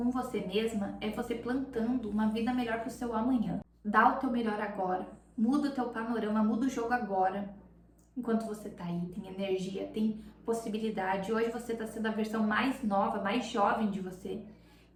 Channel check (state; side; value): identical; both; correlation 1.00